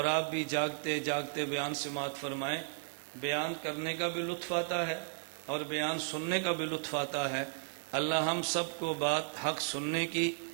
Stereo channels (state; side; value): silent; left; 55 dB below the other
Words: آپ بھی جاگتے جاگتے بیان سماعت فرمائیں۔ بیان کرنے کا بھی لطف آتا ہے اور بیان سننے کا بھی لطف آتا ہے۔ اللہ ہم سب کو بات حق سننے کی